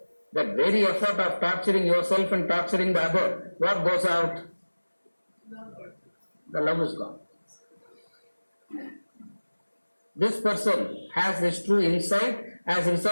That very effort of torturing yourself and torturing the other, what goes out? The love is gone. This person has this true insight, as a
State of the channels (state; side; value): inverted; both; correlation -1.00